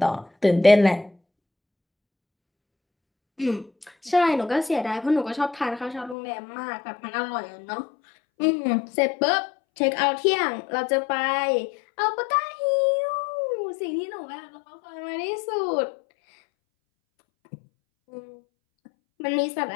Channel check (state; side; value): drops out; right; at 6.2 s